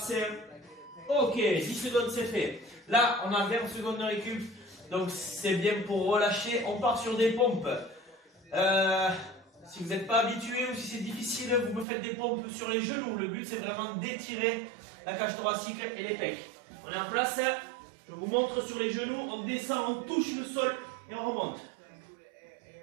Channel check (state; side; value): drops out; left; at 11.9 s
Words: Ok, 10 secondes, c'est fait. Là, on a 20 secondes de récup. Donc, c'est bien pour relâcher. On part sur des pompes. Si vous n'êtes pas habitué ou si c'est difficile, vous me faites des pompes sur les genoux. Le but, c'est vraiment d'étirer la cage thoracique et les pecs. On est en place. Je vous montre sur les genoux. On descend, on touche le sol et on remonte.